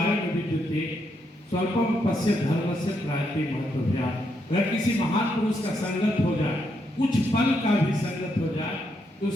विद्युते स्वल्पम पश्य धर्मस्य प्रायते महत्वभ्या। अगर किसी महान पुरुष का संगत हो जाए, कुछ पल का भी संगत हो जाए, तो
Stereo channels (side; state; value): both; normal; correlation 0.78